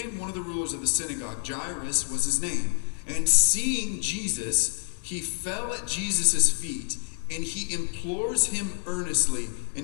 one of the rulers of the synagogue. Jairus was his name. And seeing Jesus, he fell at Jesus' feet, and he implores him earnestly.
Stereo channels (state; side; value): silent; right; 57 dB below the other